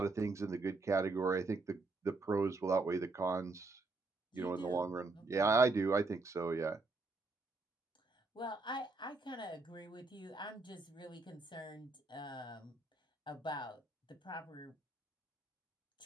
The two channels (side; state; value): left; quieter; 3.5 dB